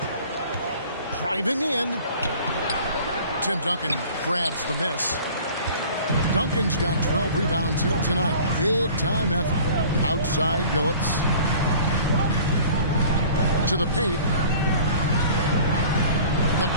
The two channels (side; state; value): both; inverted; correlation -0.47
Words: Driving in. Tim Duncan grabs the miss. Duncan's got 12 rebounds here tonight. Big time effort. Outside Billups. To the paint. The